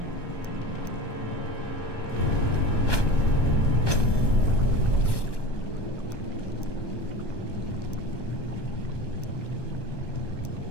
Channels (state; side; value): late; right; 1.1 ms